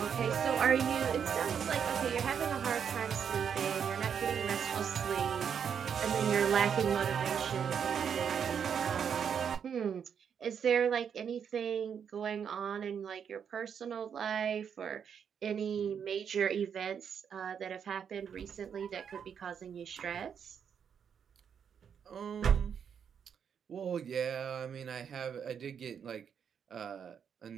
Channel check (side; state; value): left; quieter; 7.5 dB